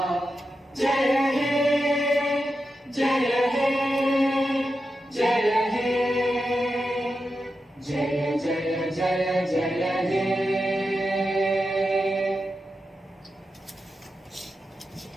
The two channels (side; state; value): both; normal; correlation 0.89